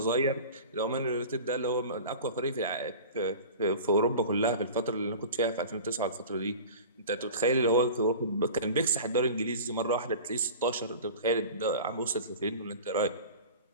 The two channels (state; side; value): inverted; both; correlation -0.37